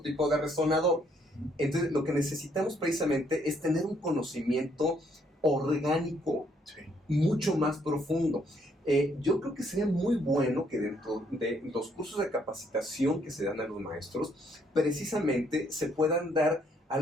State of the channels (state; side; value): normal; both; correlation 0.69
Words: tipo de resonador. Entonces, lo que necesitamos precisamente es tener un conocimiento orgánico mucho más profundo. Yo creo que sería muy bueno que dentro de los cursos de capacitación que se dan a los maestros, precisamente se puedan dar